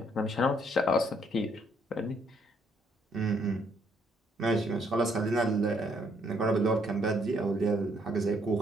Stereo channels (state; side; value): normal; both; correlation 0.69